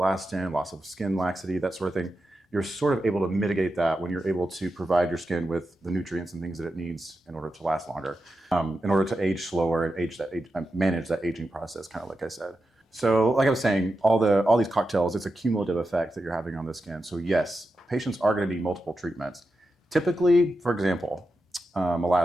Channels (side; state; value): both; normal; correlation 0.89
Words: loss of skin laxity, that sort of thing. You're sort of able to mitigate that when you're able to provide your skin with the nutrients and things that it needs in order to last longer, in order to age slower and manage that aging process, kind of like I said. So like I was saying, all these cocktails, it's a cumulative effect that you're having on the skin. So yes, patients are going to need multiple treatments. Typically, for example,